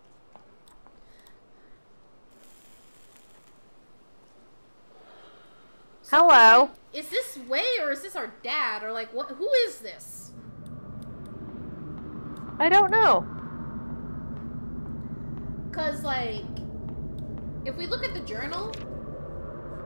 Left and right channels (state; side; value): inverted; both; correlation -1.00